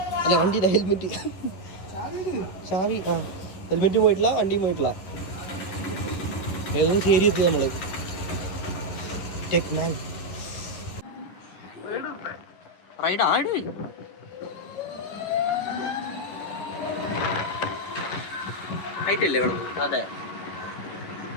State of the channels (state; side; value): late; right; 11 ms